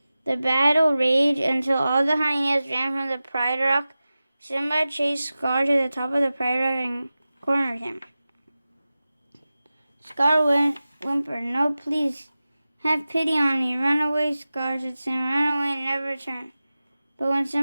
The battle raged until all the hyenas ran from the Pride Rock. Simba chased Scar to the top of the Pride Rock and cornered him. Scar whimpered, No, please, have pity on me. Run away, Scar, said Simba. Run away and never return. But when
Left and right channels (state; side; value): inverted; both; correlation -0.96